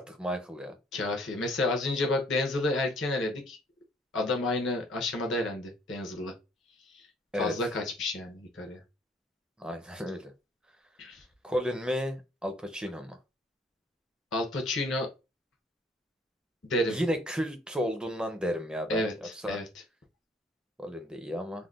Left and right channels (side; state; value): both; normal; correlation 0.60